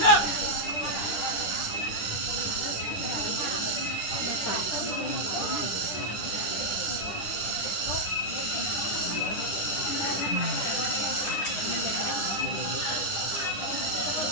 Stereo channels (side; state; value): right; late; 9.9 ms